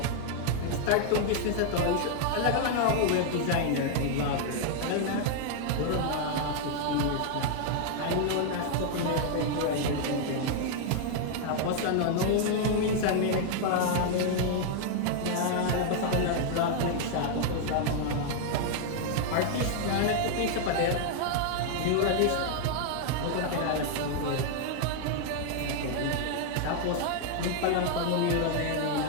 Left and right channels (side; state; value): both; different; correlation 0.00